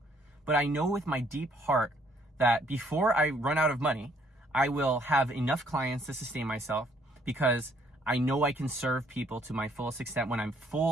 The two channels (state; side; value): normal; both; correlation 0.65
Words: But I know with my deep heart that before I run out of money, I will have enough clients to sustain myself, because I know I can serve people to my fullest extent when I'm